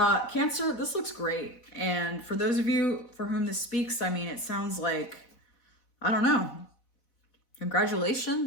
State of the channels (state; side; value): late; right; 4.1 ms